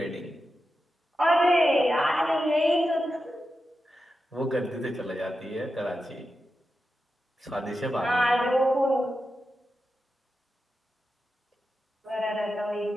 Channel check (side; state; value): both; normal; correlation 0.90